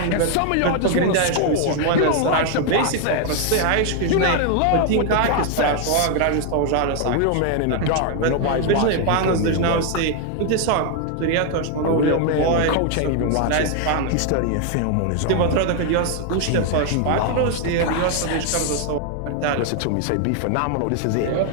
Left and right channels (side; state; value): both; different; correlation 0.00